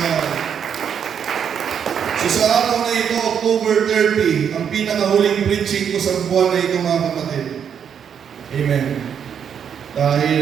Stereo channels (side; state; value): left; quieter; 7.9 dB